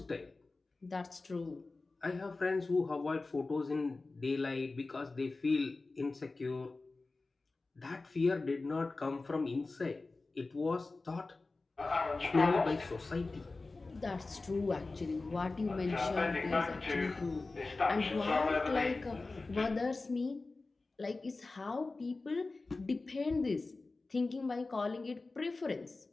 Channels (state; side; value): quieter; right; 3.5 dB